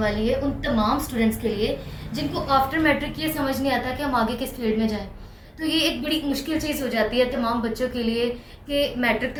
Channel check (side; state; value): both; identical; correlation 1.00